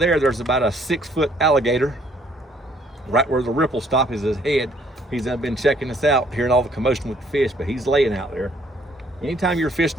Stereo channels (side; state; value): both; normal; correlation 0.64